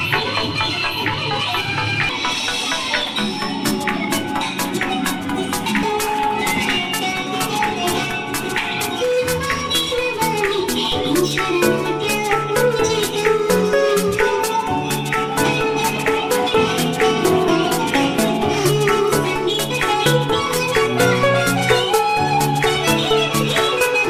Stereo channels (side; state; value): both; identical; correlation 1.00